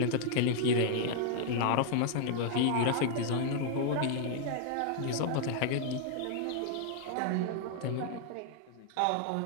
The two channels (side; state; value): both; different; correlation 0.00